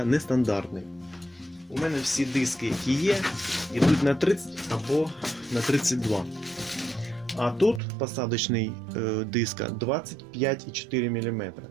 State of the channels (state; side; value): drops out; left; at 7.8 s